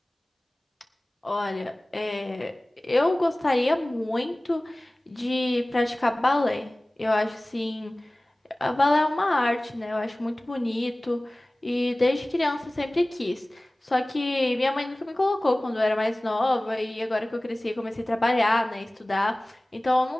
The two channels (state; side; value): normal; both; correlation 0.98